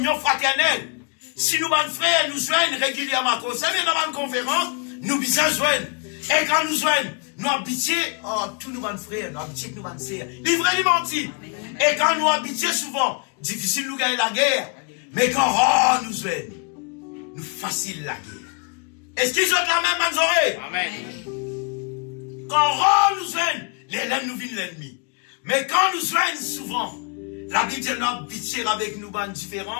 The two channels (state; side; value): quieter; right; 36.4 dB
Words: fraternelle. Si nous, mes frères, nous joignent régulièrement à cause de dans une conférence, nous bisons joindre. Et quand nous joignons, nous habitons, tous nos frères, nous habitons nos sœurs. Livré, les mentis. Et quand nous habitons souvent, difficile nous gagner la guerre. Mais quand nous joignons, nous facile la guerre. Est-ce qu'ils ont la même manzorée? Amen. Quand nous joignons, l'ennemi nous vient l'ennemi. Mais quand nous joignons souvent, la Bible dit nous habitons avec nous une